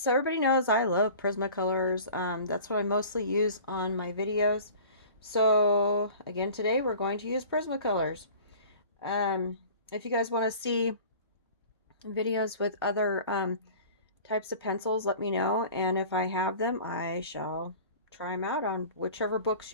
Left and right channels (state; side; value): inverted; both; correlation -0.43